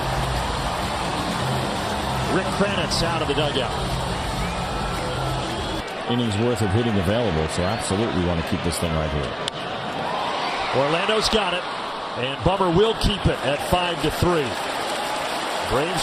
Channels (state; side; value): identical; both; correlation 1.00